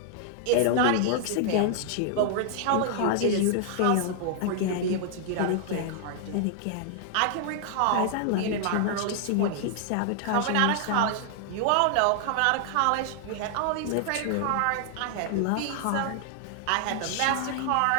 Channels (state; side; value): different; both; correlation 0.00